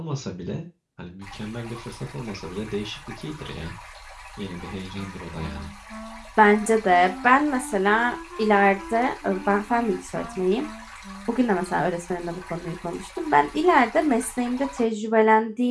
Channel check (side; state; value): both; identical; correlation 1.00